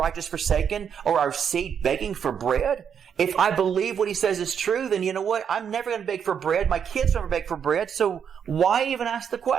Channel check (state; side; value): quieter; left; 7.7 dB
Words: forsaken or our seed begging for bread? If I believe what he says is true, then you know what? I'm never going to beg for bread. My kids never beg for bread. So why even ask the